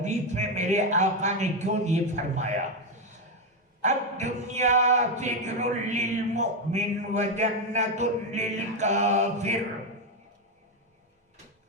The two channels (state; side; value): normal; both; correlation 0.07